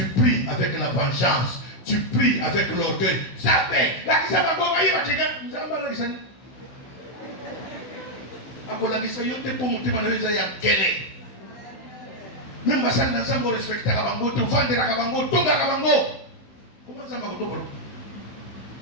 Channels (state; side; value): late; right; 15 ms